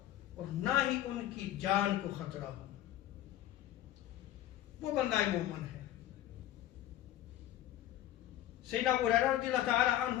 اور نہ ہی ان کی جان کو خطرہ ہو، وہ بندہ مومن ہے۔ سیدنا ابو ہریرہ رضی اللہ تعالی عنہ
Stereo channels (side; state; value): right; quieter; 13.1 dB